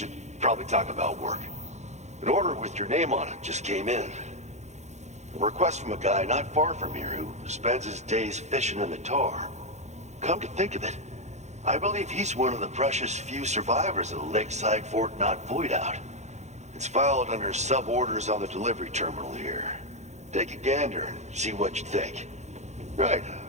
probably talk about work. An order with your name on it just came in. A request from a guy not far from here who spends his days fishing in the Tar. Come to think of it, I believe he's one of the precious few survivors of the Lakeside Fort Knott void out. It's filed under sub-orders on the delivery terminal here. Take a gander and see what you think. Right.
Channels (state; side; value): late; left; 0.33 ms